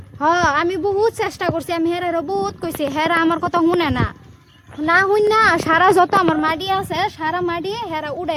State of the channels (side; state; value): both; identical; correlation 1.00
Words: আমি বহুত চেষ্টা করছি, আমি হেরারও বহুত কইছি, হেরা আমার কথা শুনে না। না শুন না সারা যত আমার মাটি আছে সারা মাটি হেরা